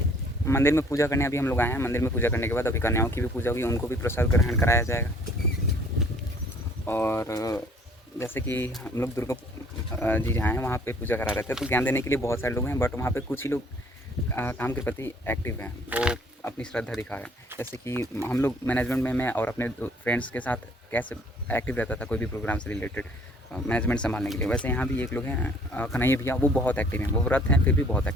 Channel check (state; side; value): normal; both; correlation 0.58